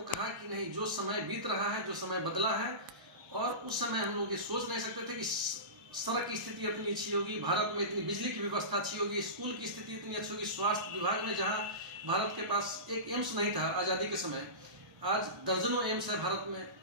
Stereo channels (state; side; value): late; left; 1.0 ms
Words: कहा कि नहीं, जो समय बीत रहा है, जो समय बदला है, और उस समय हम लोग ये सोच नहीं सकते थे कि सड़क की स्थिति इतनी अच्छी होगी, भारत में इतनी बिजली की व्यवस्था अच्छी होगी, स्कूल की स्थिति इतनी अच्छी होगी, स्वास्थ्य विभाग में जहाँ भारत के पास एक एम्स नहीं था आज़ादी के समय, आज दर्जनों एम्स है भारत में।